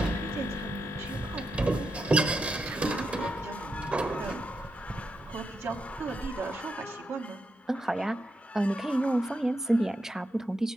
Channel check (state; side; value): normal; both; correlation 0.84